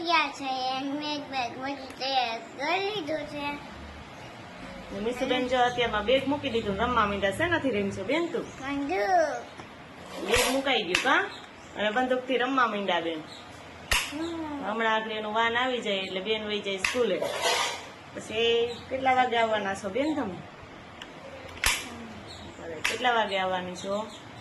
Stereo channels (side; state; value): both; identical; correlation 1.00